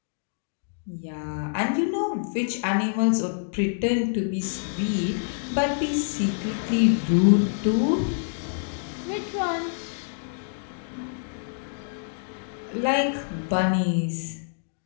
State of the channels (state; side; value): silent; right; digital silence